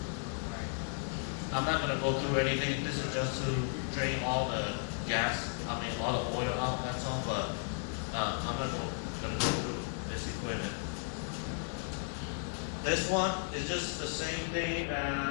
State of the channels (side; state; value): right; silent; 55 dB below the other